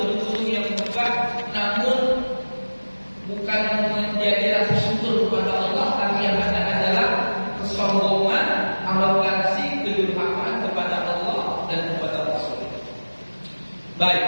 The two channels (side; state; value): both; inverted; correlation -1.00